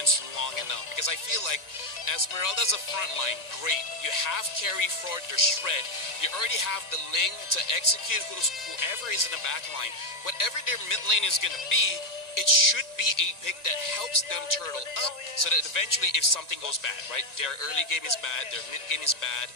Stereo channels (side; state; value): right; late; 1.9 ms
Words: long enough. Because I feel like Esmeralda's a front line, great. You have carry for their shred. You already have the Ling to execute whoever is in the back line. Whatever their mid lane is going to be, it should be a pick that helps them turtle up so that eventually if something goes bad, right? Their early game is bad, their mid game is bad.